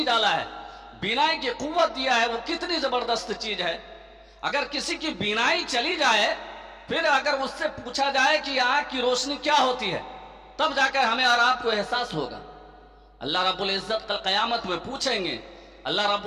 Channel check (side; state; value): both; identical; correlation 1.00